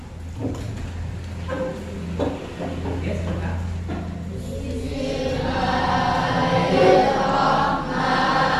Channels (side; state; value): both; identical; correlation 1.00